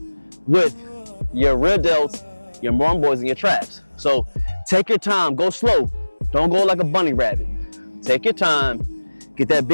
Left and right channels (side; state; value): both; inverted; correlation -1.00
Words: with your rear delts, your rhomboids, and your traps. So take your time, go slow. Don't go like a bunny rabbit. Take your time, get that